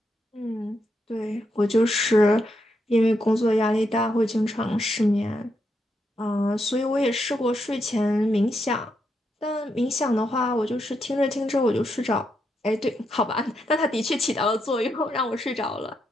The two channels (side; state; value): both; normal; correlation 0.81